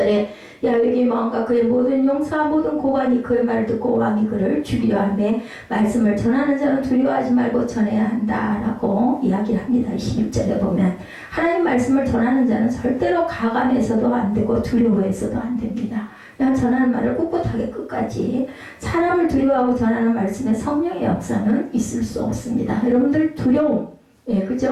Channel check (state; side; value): identical; both; correlation 1.00